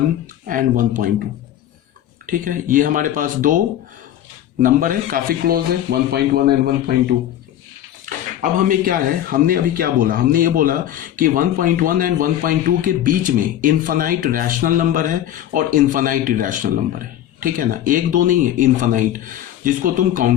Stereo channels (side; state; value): right; quieter; 11.7 dB